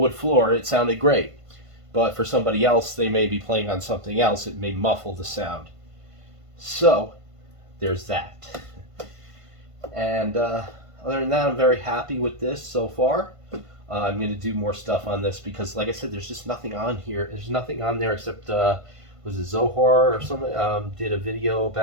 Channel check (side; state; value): left; late; 1.5 ms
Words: floor. It sounded great. But for somebody else, they may be playing on something else. It may muffle the sound. So, there's that. And other than that, I'm very happy with this so far. I'm going to do more stuff on this because, like I said, there's just nothing on here. There's nothing on there except, was it Zohar or something? Did a video